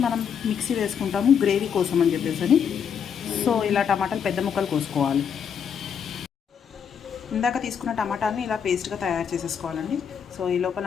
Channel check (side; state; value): right; quieter; 7.5 dB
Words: మనం మిక్సీ వేసుకుంటాము గ్రేవీ కోసం అని చెప్పేసి. సో ఇలా టమాటాలు పెద్ద ముక్కలు కోసుకోవాలి. ఇందాక తీసుకున్న టమాటాని ఇలా పేస్ట్గా తయారు చేసేసుకోవాలండి. సో ఈ లోపల